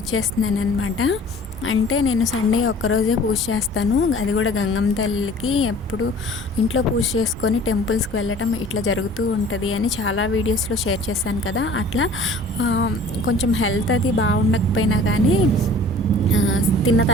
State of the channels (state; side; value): normal; both; correlation 0.47